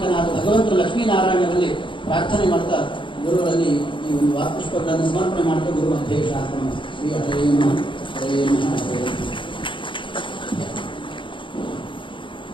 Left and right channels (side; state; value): right; late; 0.24 ms